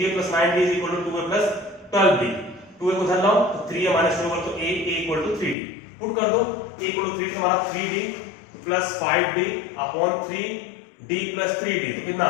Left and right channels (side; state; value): right; drops out; at 5.6 s